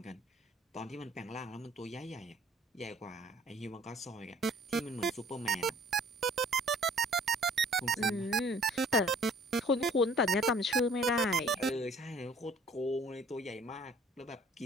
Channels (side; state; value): both; normal; correlation 0.54